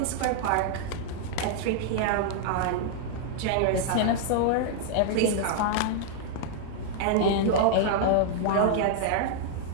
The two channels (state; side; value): different; both; correlation -0.01